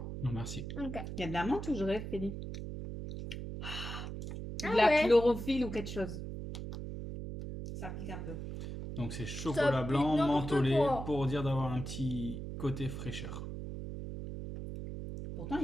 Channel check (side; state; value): right; noise; hum, 7 dB below the sound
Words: Non, merci. Ok. Il y a de la menthe ou je rêve, Félix? Ah De la ouais. chlorophylle ou quelque chose. Ça pique un peu. Donc c'est chocolat pique blanc n'importe mentholé quoi. pour dire d'avoir un petit côté fraîcheur. Pourtant, il